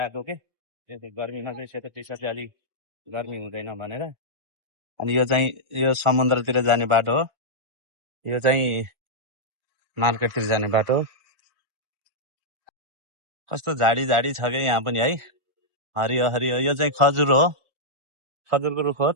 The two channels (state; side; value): late; left; 1.4 ms